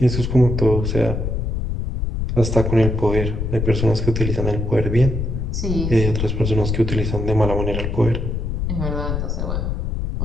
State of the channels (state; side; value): noise; left; rumble, 2 dB below the sound